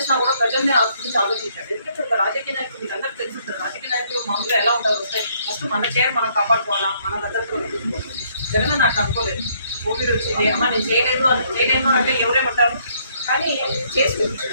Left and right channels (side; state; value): both; inverted; correlation -0.67